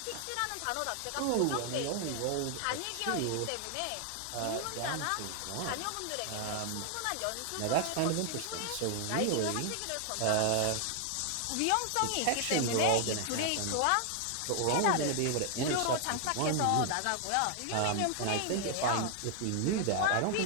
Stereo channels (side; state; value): both; different; correlation 0.00